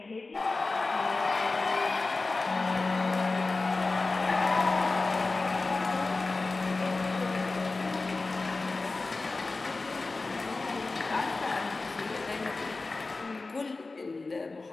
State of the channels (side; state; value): right; quieter; 3.6 dB